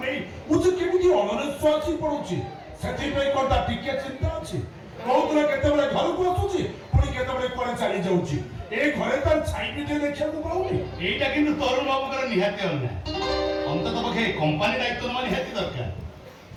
ନେଇ ମୁଁ ଯେ କେମିତି ଅନନିଶ୍ୱାସ ଆସି ପଡୁଛି। ସେଥିପାଇଁ କ'ଣ ତା ଟିକେ ଚିନ୍ତା ଅଛି? କହୁଥିଲେ କେତେବେଳେ ଘରକୁ ଆସୁଛି ପୁଣି କେତେବେଳେ କୁଆଡେ ଚାଲି ଯାଉଛି। ଏ ଘରେ ତାର ଛାଇ ବି ଟିକେ ଦେଖିବାକୁ ପାଉନି। এইটা কিন্তু তরুণ বাবুଙ୍କର ନିହାତି ଅନ୍ୟାୟ। ଅନ୍ତତଃ ପକ୍ଷେ କମ୍ପାନୀ ଦାୟିତ୍ୱ ନେବା ନିହାତି ଦରକାର।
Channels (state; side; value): identical; both; correlation 1.00